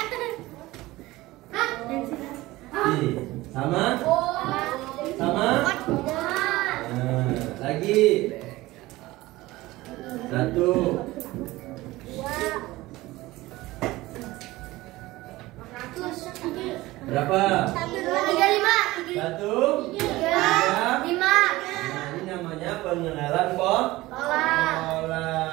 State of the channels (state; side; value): quieter; left; 18.8 dB